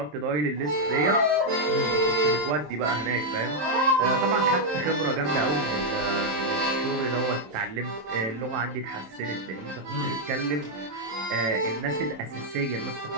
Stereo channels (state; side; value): late; left; 27 ms